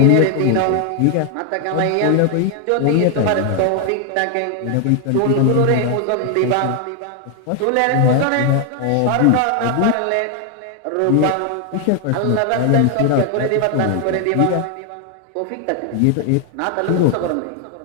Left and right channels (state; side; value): different; both; correlation 0.00